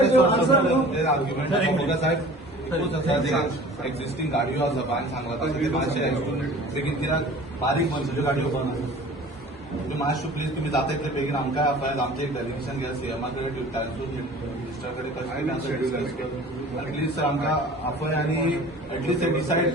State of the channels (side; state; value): both; normal; correlation 0.44